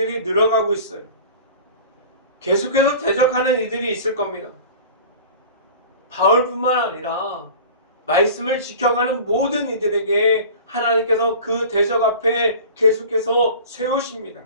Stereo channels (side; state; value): both; inverted; correlation -0.40